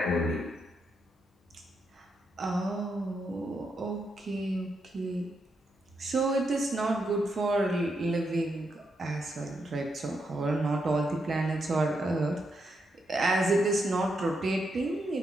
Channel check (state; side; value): normal; both; correlation 0.82